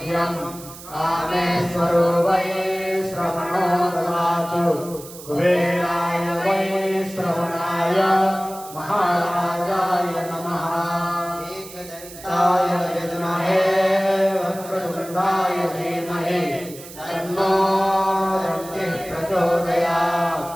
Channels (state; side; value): noise; right; hiss, 16 dB below the sound